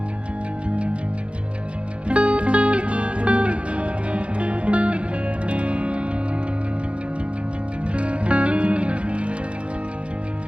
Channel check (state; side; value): late; left; 0.060 ms